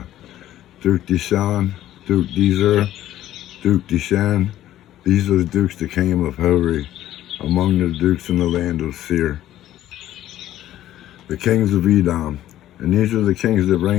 Duke Dishon, Duke Dezer, Duke Dishan. These are the dukes that came of Hori, among the dukes in the land of Seir. The kings of Edom. And these are the kings that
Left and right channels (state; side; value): quieter; right; 13.2 dB